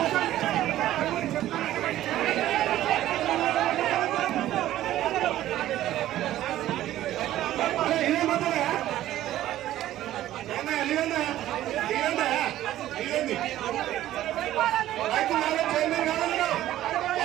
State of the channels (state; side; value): quieter; left; 13.7 dB